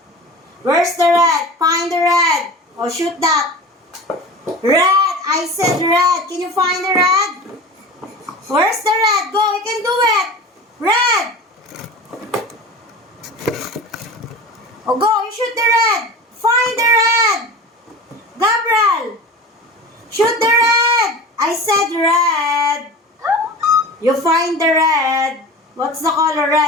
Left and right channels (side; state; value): both; normal; correlation 0.34